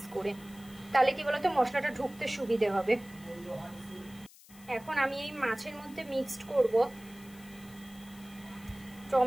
করে। তাহলে কি বলতো মশলাটা ঢুকতে সুবিধে হবে। এখন আমি এই মাছের মধ্যে মিক্সড করব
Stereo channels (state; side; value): noise; left; hiss, 22 dB below the sound